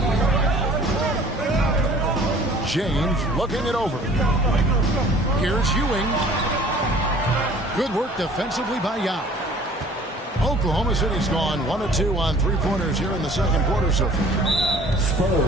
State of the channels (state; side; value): normal; both; correlation 0.51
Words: James looking it over. Here's Ewing. Good work defensively by Yao. Oklahoma City's gone 1 of 2 on 3-pointers here in the second quarter so far.